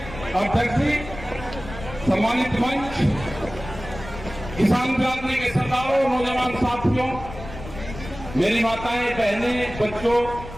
अध्यक्ष जी, सम्मानित मंच, किसान क्रांति के सरदारों, नौजवान साथियों, मेरी माताएं, बहनें, बच्चों,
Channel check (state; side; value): noise; left; rumble, 13 dB below the sound